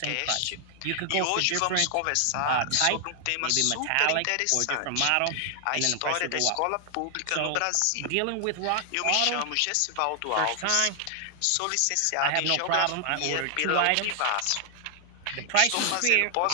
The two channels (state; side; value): different; both; correlation 0.00